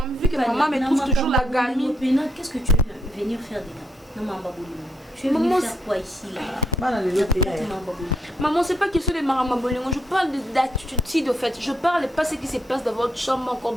Vu que maman me trouve toujours la gamine. Qu'est-ce que tu veux venir faire dedans? Non, maman. Tu veux venir faire quoi ici là? Maman, c'est pas question de maramabolingo. Je parle d'attitude de fait. Je parle pas ce qui se passe dans votre chambre, encore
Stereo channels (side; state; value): both; normal; correlation 0.76